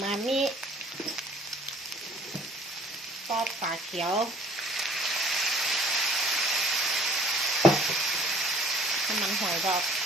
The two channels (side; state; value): both; normal; correlation 0.53